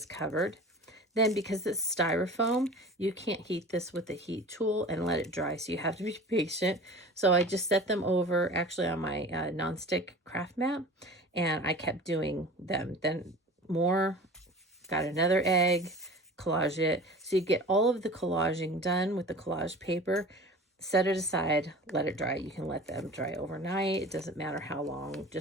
covered. Then, because it's styrofoam, you can't heat this with a heat tool and let it dry, so you have to be patient. So I just set them over actually on my nonstick craft mat, and I kept doing them. Then more, got another egg, collage it. So you get all of the collaging done with the collage paper, set it aside, let it dry. You can let them dry overnight. It doesn't matter how long,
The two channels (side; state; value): both; normal; correlation 0.39